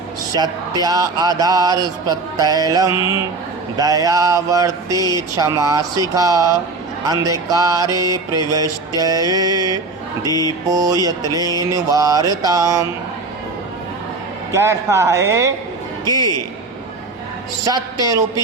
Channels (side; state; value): left; quieter; 3.7 dB